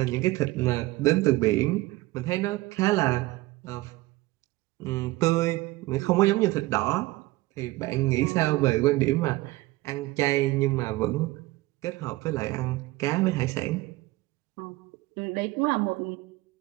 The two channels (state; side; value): quieter; left; 19.7 dB